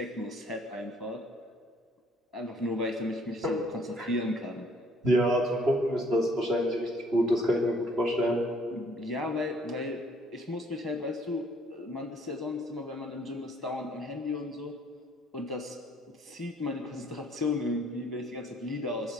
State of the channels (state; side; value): normal; both; correlation 0.61